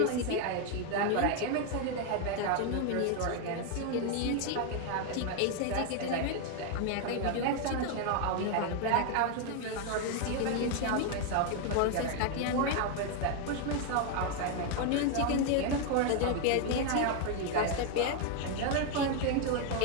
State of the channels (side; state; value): both; different; correlation 0.01